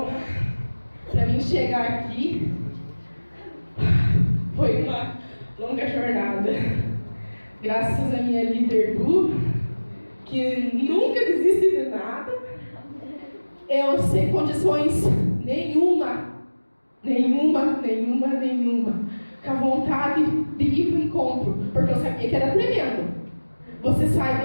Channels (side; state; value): both; inverted; correlation -1.00